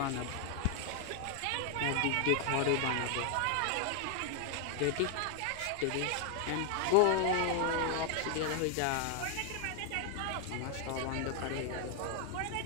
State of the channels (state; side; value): different; both; correlation 0.00